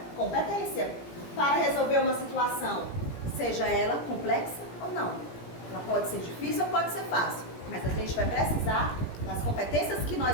competência para resolver uma situação, seja ela complexa ou não. Ela pode ser difícil ou pode ser fácil, mas a gente vai precisar das competências que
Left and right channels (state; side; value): late; right; 17 ms